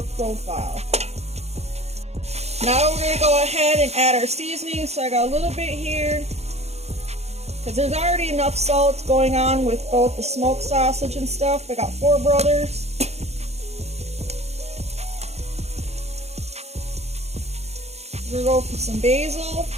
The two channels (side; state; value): left; late; 0.31 ms